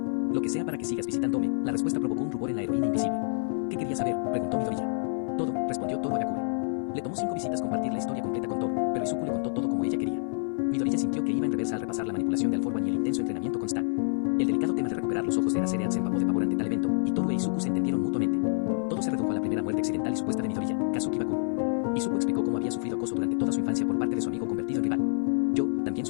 Lo que sea para que sigas visitándome. La respuesta provocó un rubor en la heroína invisible. ¿Qué querías saber?, preguntó Midoriya. Todo, respondió Toru Agakure. Le tomó 5 visitas compartir la historia completa con Toru, pero Izuku le contó todo como ella quería. Midoriya sintió que iba en reversa al repasar la manipulación de All For One y el intenso entrenamiento con Stan. El delicado tema de recuperar los ojos de Eraserhead se empapó de pavor ante tal evento, y Toru e Izuku se entendieron mutuamente. Todo se redujo a la primera muerte accidental y supuesta de Midoriya, Kazuki Bakugo. Izuku explicó cómo había sufrido acoso durante toda su infancia por parte de su amigo convertido en rival. Yo también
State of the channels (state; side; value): silent; right; digital silence